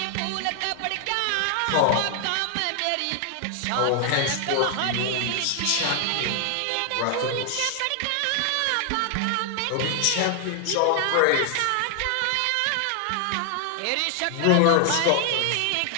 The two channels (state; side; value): different; both; correlation 0.00